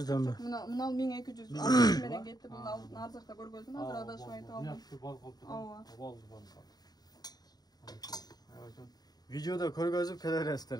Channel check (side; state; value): right; late; 0.19 ms